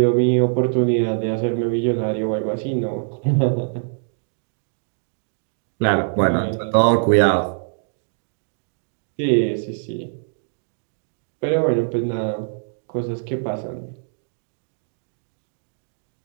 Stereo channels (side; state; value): left; silent; digital silence